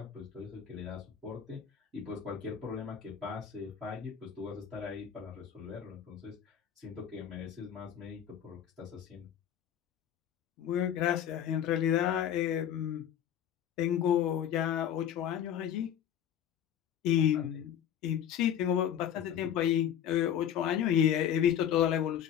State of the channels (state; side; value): quieter; right; 9.5 dB